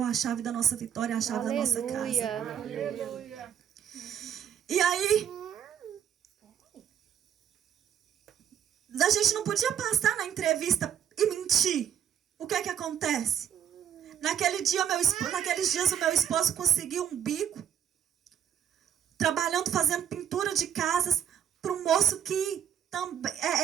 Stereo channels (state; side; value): quieter; left; 9.1 dB